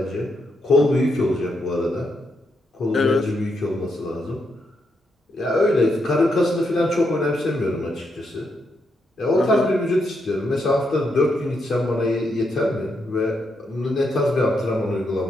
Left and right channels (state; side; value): normal; both; correlation 0.80